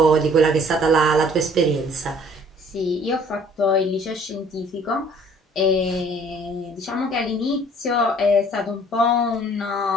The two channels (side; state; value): both; normal; correlation 0.55